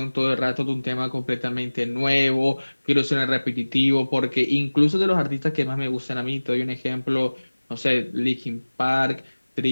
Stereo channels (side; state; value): both; inverted; correlation -1.00